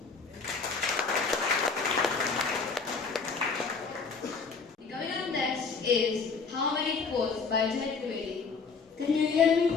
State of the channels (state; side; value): quieter; right; 4.9 dB